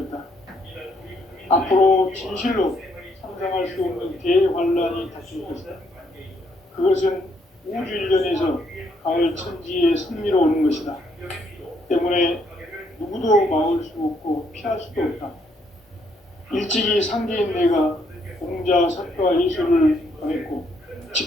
앞으로 진실로 상상할 수 없는 대환란이 닥칠 것이다. 그것은 우주 일련에서 가을 천지의 섭리로 오는 것이다. 때문에 누구도 막을 수 없고 피할 수도 없다. 일찍이 상제인 내가 공자, 석가, 예수를 보냈고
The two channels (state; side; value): normal; both; correlation 0.72